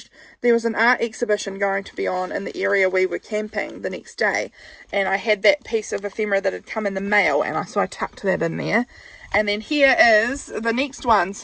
There was an art exhibition going to be on in the area we were camping the next day, and I had that piece of ephemera that had come in the mail, and so I tucked that in there. And then here is the next one.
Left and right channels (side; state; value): both; identical; correlation 1.00